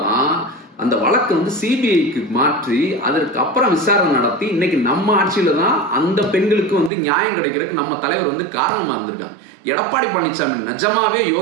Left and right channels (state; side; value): drops out; left; at 6.9 s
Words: அந்த வழக்கு சிபிஐக்கு மாற்றி அதற்கு அப்புறம் விசாரணை நடத்தி இன்னைக்கு நம்ம ஆட்சியில தான் அந்த பெண்களுக்கு நியாயம் கிடைக்கிறதுக்கு நம்ம தலைவர் காரணமா இருந்திருக்காங்க. எடப்பாடி பழனிசாமி நிஜமாவே